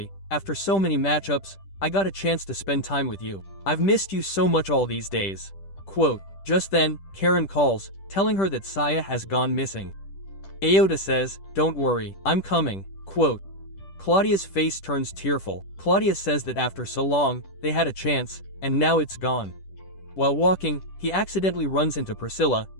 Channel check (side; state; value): right; late; 10 ms